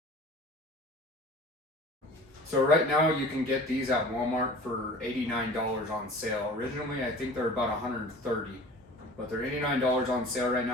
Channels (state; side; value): normal; both; correlation 0.42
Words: So right now you can get these at Walmart for $89 on sale. Originally I think they're about $130, but they're $89 on sale right